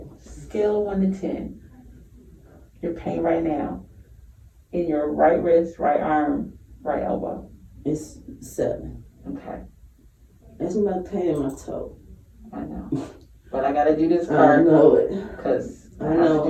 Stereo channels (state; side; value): identical; both; correlation 1.00